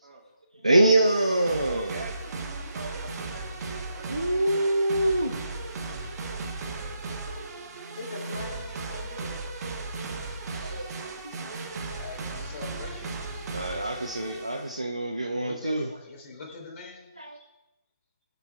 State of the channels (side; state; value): both; inverted; correlation -0.80